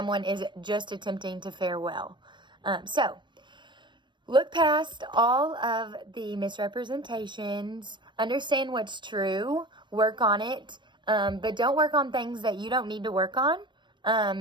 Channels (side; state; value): left; late; 0.22 ms